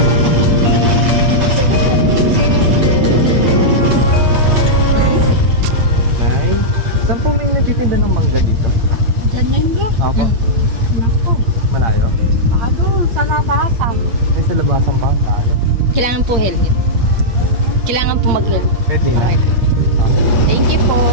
Ay, saan po may nagtitinda ng mangga dito? Diyan na yun doon. Ako? Naku. Malayo? Ano, sa labasan. Yung sa labasan pa? Kailangan po helmet. Kailangan po mag-helmet. Pwede na. Thank you po.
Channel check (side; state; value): left; late; 8.6 ms